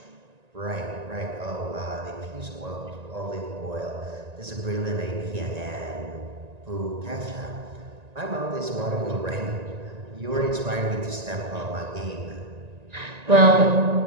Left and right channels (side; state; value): left; late; 1.9 ms